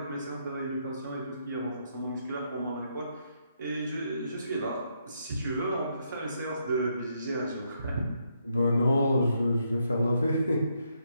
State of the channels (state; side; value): inverted; both; correlation -0.76